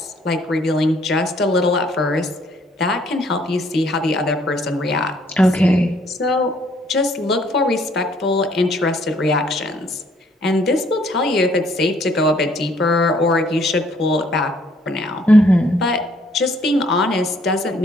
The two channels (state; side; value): normal; both; correlation 0.64